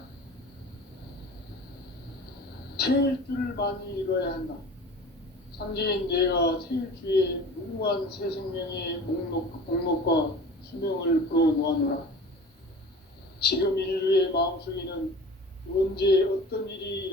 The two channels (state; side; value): normal; both; correlation 0.40